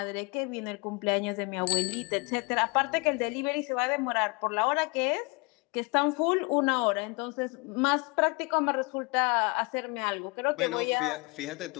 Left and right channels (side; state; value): right; quieter; 29.3 dB